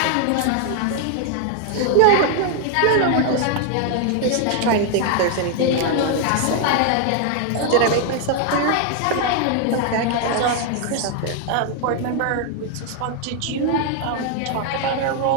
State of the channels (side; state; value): both; different; correlation 0.00